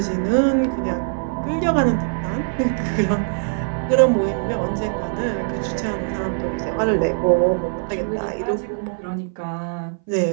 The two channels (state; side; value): silent; left; 60 dB below the other